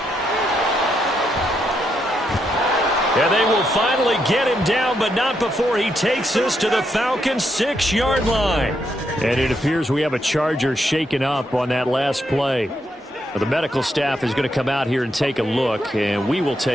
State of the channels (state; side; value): normal; both; correlation 0.79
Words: And they will finally get him down, but not before he takes us to the Falcons' 6-yard line. And it appears we have a Charger shaken up on that last play. The medical staff is going to come out here and take a look, and we will